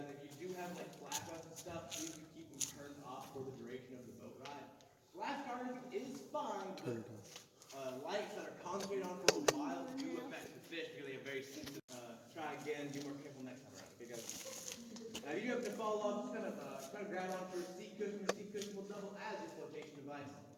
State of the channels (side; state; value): both; identical; correlation 1.00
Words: if you do have like flashlights and stuff, please do keep them turned off for the duration of the boat ride. Flash charging is fine, but lights that are concentrated on for a while do affect the fish because they have very sensitive. Try again, be more careful next time around. Okay, guys. Now you have to fall off, just kind of grab onto a seat cushion. The seat cushion will double as a flotation device.